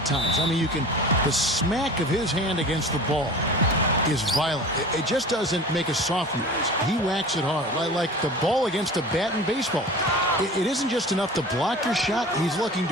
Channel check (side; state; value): both; normal; correlation 0.38